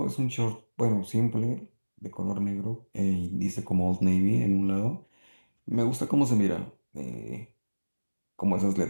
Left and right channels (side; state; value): both; inverted; correlation -1.00